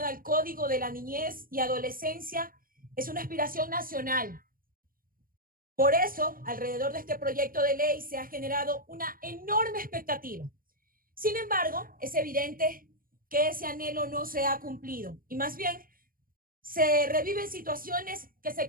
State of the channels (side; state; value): left; late; 0.41 ms